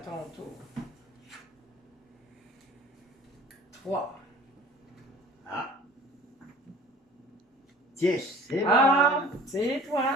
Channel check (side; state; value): both; normal; correlation 0.47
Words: tour. 3. Ah. 10, c'est moi. Ah, c'est